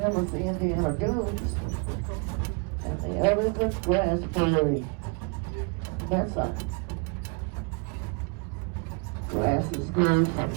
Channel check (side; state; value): left; quieter; 33.3 dB